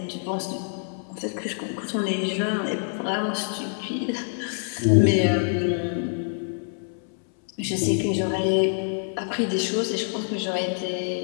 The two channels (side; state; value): right; silent; 61 dB below the other